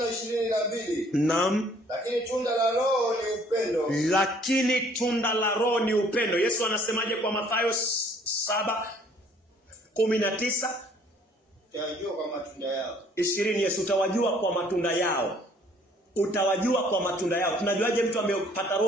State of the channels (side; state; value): both; normal; correlation 0.59